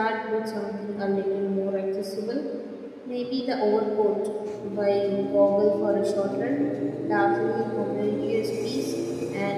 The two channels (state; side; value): identical; both; correlation 1.00